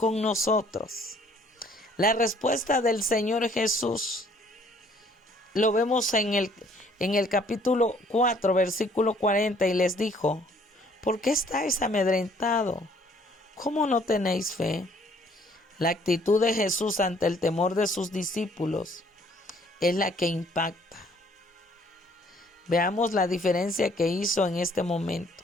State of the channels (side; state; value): both; normal; correlation 0.60